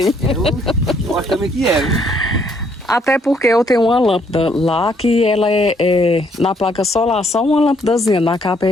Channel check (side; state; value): both; normal; correlation 0.68